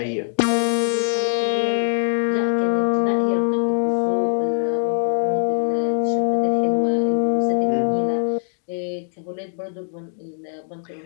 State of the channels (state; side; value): silent; right; digital silence